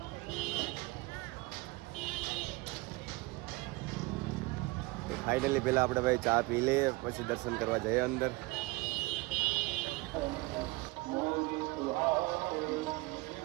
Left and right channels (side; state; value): left; quieter; 23.3 dB